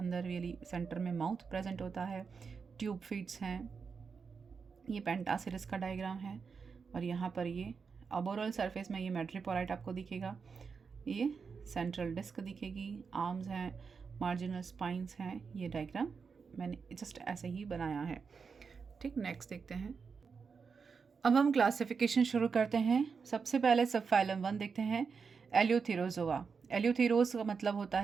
रियली सेंटर में माउथ प्रेजेंट होता है। ट्यूब फीट्स हैं, ये पेंटासिरिस का डायग्राम है और यहाँ पर ये अबोरल सरफेस में ये मेट्रीपोराइट आपको दिखेगा, ये सेंट्रल डिस्क दिखेगी, आर्म्स हैं, मार्जिनल स्पाइंस हैं। ये डायग्राम मैंने जस्ट ऐसे ही बनाया है। ठीक, नेक्स्ट देखते हैं। अब हम क्लासिफिकेशन शुरू करते हैं। सबसे पहले सब फाइलम 1 देखते हैं, एल्यूथेरोजोआ। एल्यूथेरोज का मतलब होता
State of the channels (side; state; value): left; quieter; 5.5 dB